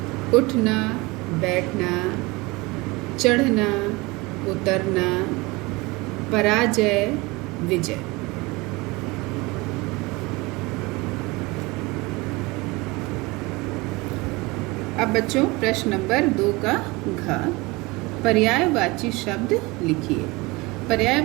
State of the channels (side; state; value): left; quieter; 23.8 dB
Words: उठना, बैठना, चढ़ना, उतरना, पराजय, विजय। अब बच्चों प्रश्न नंबर 2 का घ, पर्यायवाची शब्द लिखिए।